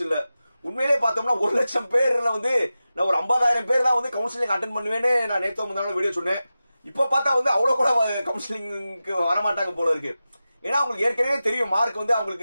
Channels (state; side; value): inverted; both; correlation -0.94